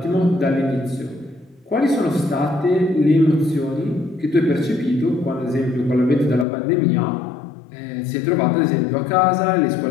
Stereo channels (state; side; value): drops out; right; at 6.5 s